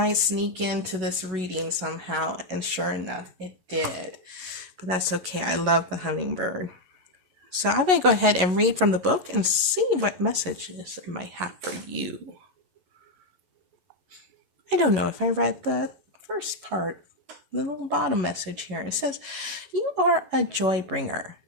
sneak into this reading somehow, and sure enough, it did. But that's okay. I love the hummingbird. So I'm going to go ahead and read from the book and see what messages it might have for you. I don't know if I read the first part, the little bottom message here. It says, you are a joy bringer.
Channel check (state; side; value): late; left; 11 ms